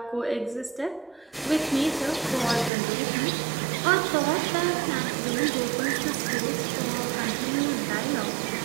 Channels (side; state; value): left; drops out; at 2.7 s